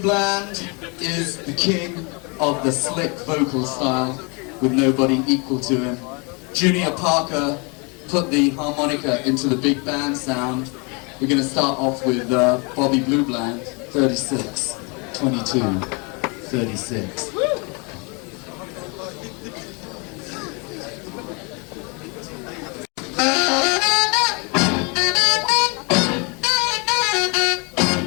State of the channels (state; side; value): quieter; right; 31.7 dB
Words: is the king of the slick vocal style with nobody equal to him. Junior Parker put the harmonica into the big band sound. We're going to start off with Bobby Blue Bland, 36, 22, 36.